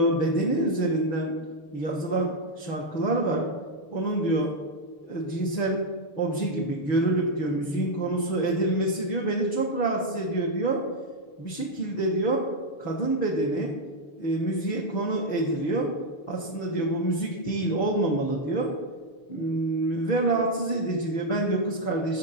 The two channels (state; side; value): late; right; 6.8 ms